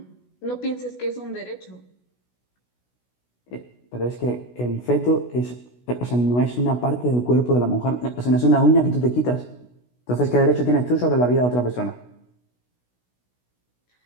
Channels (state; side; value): late; right; 16 ms